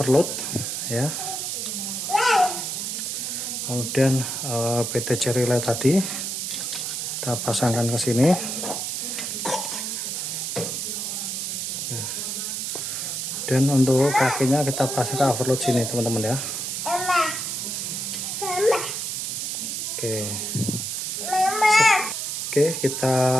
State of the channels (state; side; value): noise; right; hiss, 3 dB below the sound